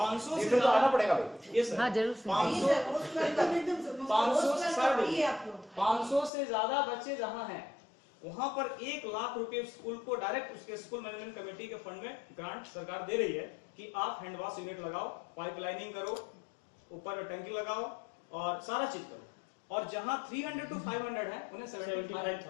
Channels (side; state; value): right; drops out; at 6.3 s